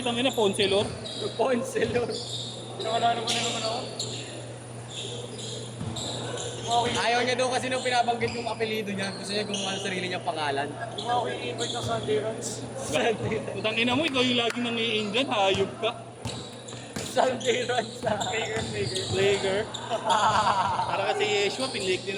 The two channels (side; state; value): both; identical; correlation 1.00